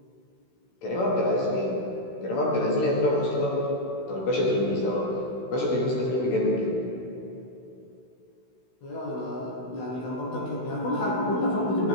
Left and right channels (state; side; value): late; right; 16 ms